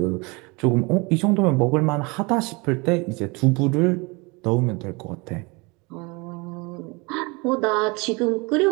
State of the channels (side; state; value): left; quieter; 27.4 dB